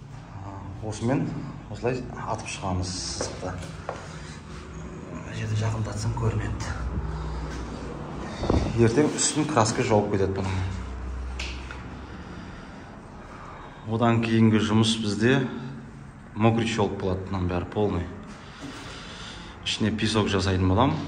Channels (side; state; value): both; identical; correlation 1.00